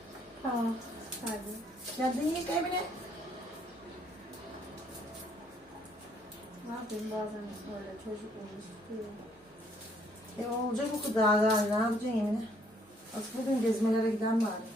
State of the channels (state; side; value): normal; both; correlation 0.66